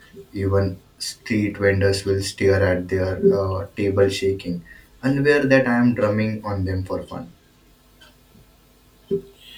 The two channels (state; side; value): identical; both; correlation 1.00